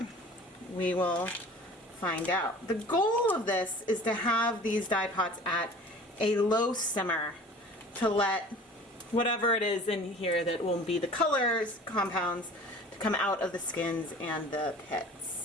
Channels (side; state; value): both; normal; correlation 0.44